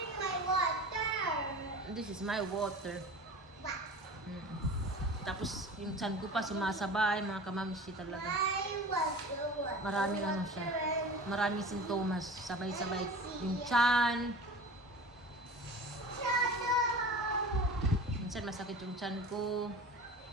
my water? This is my water. What? Tapos yung tiyan ko pa sumasabay, mga kamamsi talaga. Maraming ano siya. Maraming sintomas. Sabay-sabay. Yung tiyan. Minsan masakit yung tiyan ko.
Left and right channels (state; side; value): normal; both; correlation 0.37